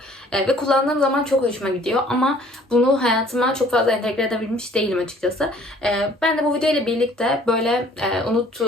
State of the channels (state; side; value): normal; both; correlation 0.56